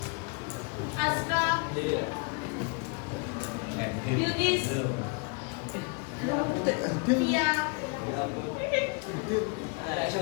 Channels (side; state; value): right; quieter; 32.5 dB